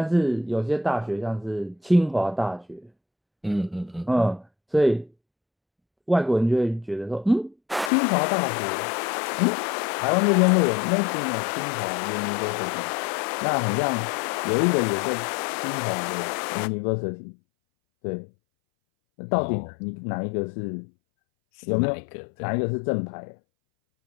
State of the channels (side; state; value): right; drops out; at 7.9 s